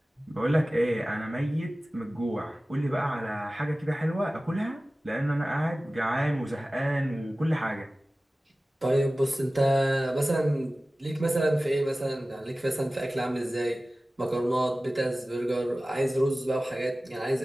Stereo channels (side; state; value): both; normal; correlation 0.97